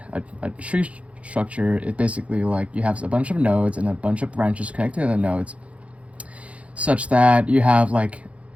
a tree structure is basically like you have a bunch of nodes and a bunch of branches connected to the nodes, such that you have like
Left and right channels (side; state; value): left; late; 0.063 ms